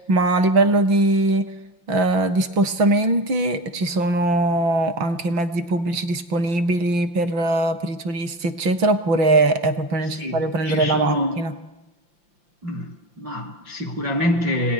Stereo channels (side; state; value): left; late; 5.8 ms